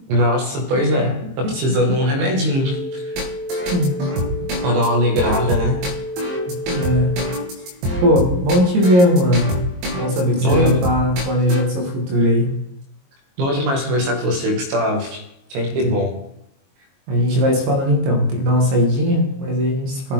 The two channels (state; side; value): late; left; 22 ms